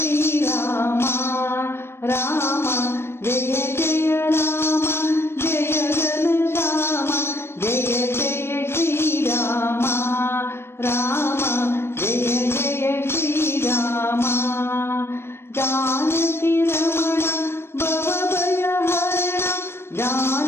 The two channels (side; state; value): right; late; 0.12 ms